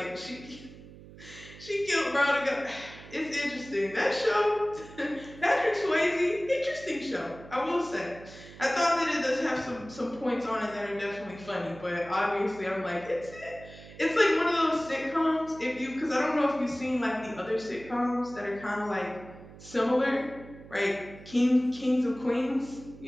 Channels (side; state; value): right; noise; hum, 18 dB below the sound